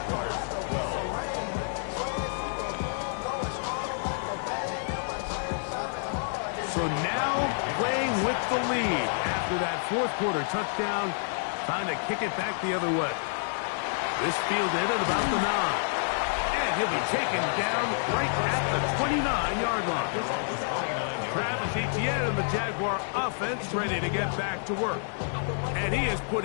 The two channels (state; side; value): silent; right; digital silence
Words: So now playing with the lead after that fourth quarter touchdown, trying to kick it back the other way. This fielded at about the 9. And he'll be taken down right at the 29-yard line. Travis Etienne and the Jaguar offense ready to get back to work. And he has put